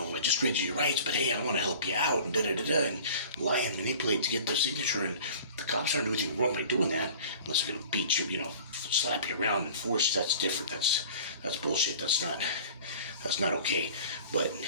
just read you your rights, but hey, I want to help you out, and da-da-da-da, and lie and manipulate to get their signature, and the cops aren't doing anything wrong by doing that, unless they're going to beat you, slap you around and force. That's different. That's bullshit. That's not okay. But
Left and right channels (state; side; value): inverted; both; correlation -0.43